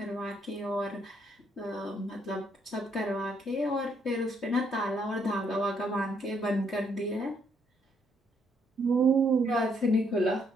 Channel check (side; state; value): both; normal; correlation 0.71